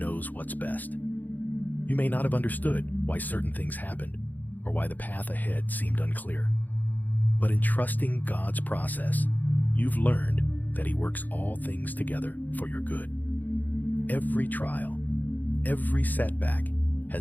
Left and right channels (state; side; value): late; right; 0.084 ms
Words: what's best. You may not have understood why certain things happened or why the path ahead seemed unclear. But in trusting God's process, you've learned that He works all things together for your good. Every trial, every setback